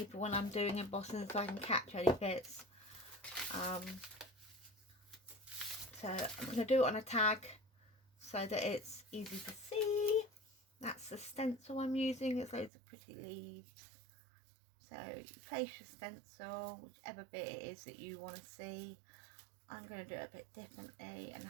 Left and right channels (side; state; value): left; drops out; at 12.7 s